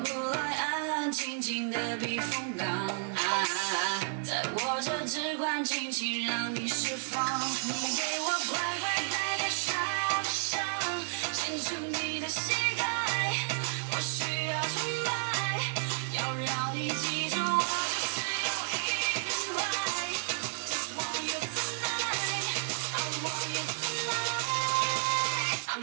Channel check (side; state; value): left; silent; 57 dB below the other